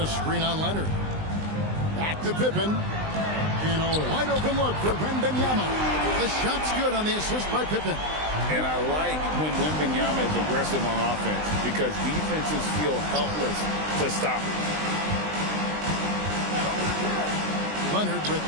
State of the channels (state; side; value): late; left; 20 ms